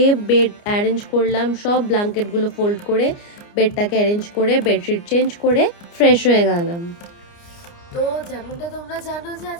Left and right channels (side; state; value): right; late; 29 ms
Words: বেড অ্যারেঞ্জ করলাম, সব ব্ল্যাঙ্কেটগুলো ফোল্ড করে বেডটাকে অ্যারেঞ্জ করে বেডশিট চেঞ্জ করে ফ্রেশ হয়ে গেলাম। তো যেমনটা তোমরা জানো যে